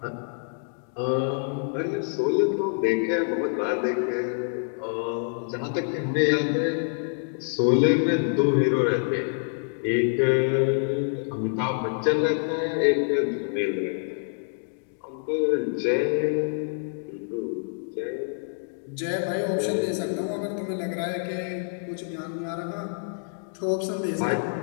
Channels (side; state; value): right; silent; digital silence